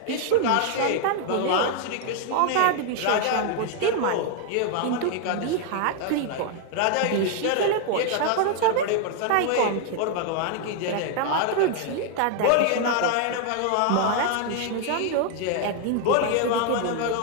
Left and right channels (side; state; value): both; different; correlation 0.00